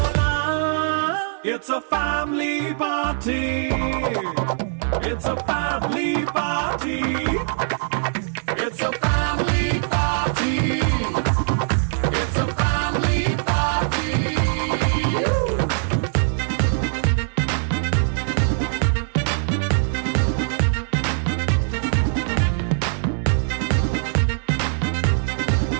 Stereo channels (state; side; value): silent; left; digital silence